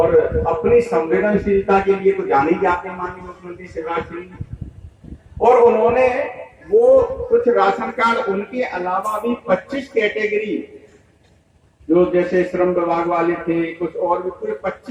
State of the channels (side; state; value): both; identical; correlation 1.00